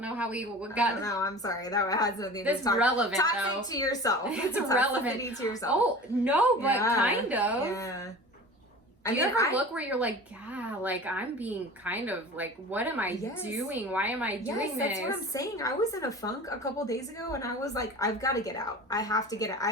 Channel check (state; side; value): normal; both; correlation 0.38